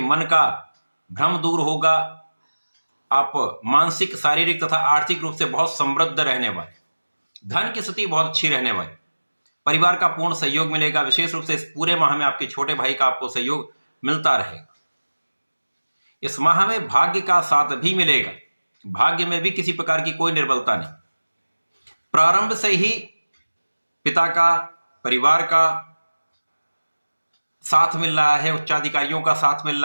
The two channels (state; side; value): inverted; both; correlation -1.00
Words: मन का भ्रम दूर होगा, आप मानसिक, शारीरिक तथा आर्थिक रूप से बहुत समृद्ध रहने वाले, धन की स्थिति बहुत अच्छी रहने वाली, परिवार का पूर्ण सहयोग मिलेगा। विशेष रूप से इस पूरे माह में आपके छोटे भाई का आपको सहयोग मिलता रहेगा। इस माह में भाग्य का साथ भी मिलेगा, भाग्य में भी किसी प्रकार की कोई निर्बलता नहीं। प्रारंभ से ही पिता का, परिवार का साथ मिल रहा है, उच्चाधिकारियों का साथ